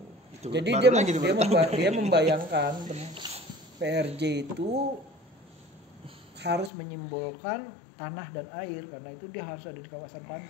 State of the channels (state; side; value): drops out; right; at 6.7 s